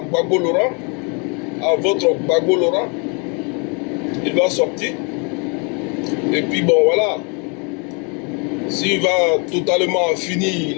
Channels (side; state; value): right; quieter; 34.7 dB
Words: Laurent, à votre Gbagbo Laurent, il va sortir. Et puis bon, voilà. S'il va totalement finir